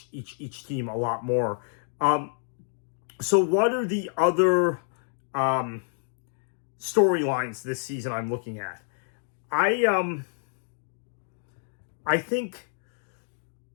each team a lot more. So what are the other storylines this season I'm looking at? I think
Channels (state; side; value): silent; right; digital silence